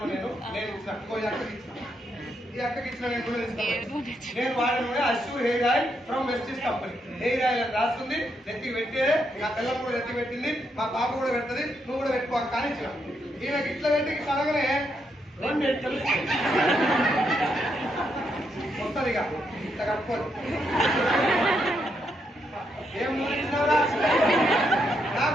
నేను ఇచ్చిన అక్కకి ఇచ్చిన. ఈ అక్కకి ఇచ్చిన నేను నూనె తీసుకున్నాను. నేను వాడిన నూనె Assure hair oil from Vestige company. Hair oil అని రాసుకుంది, నెత్తికి పెట్టేదే. నా పిల్లలు కూడా నెత్తి పెట్టింది, మా పాప కూడా పెడుతుంది, నువ్వు కూడా పెట్టుకో కానీ ఇచ్చిన. ఈయనకి ఇట్లా పెట్టి ఇట్లా అనగానే 2 ఎంటికలు వస్తుంది. ఇక ఇట్లా కట్టుకోదు. ఏం నూనె ఇచ్చినారా?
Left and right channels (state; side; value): normal; both; correlation 0.79